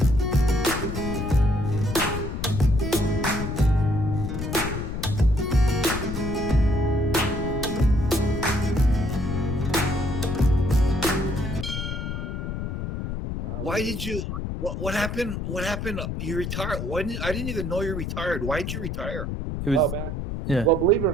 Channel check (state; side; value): noise; left; rumble, 4 dB below the sound